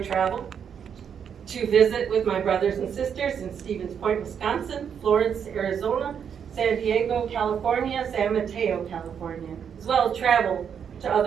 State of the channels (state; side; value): quieter; left; 7.7 dB